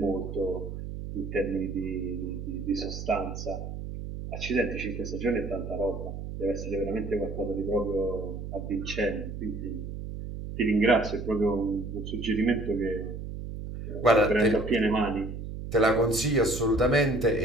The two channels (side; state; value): right; noise; hum, 7 dB below the sound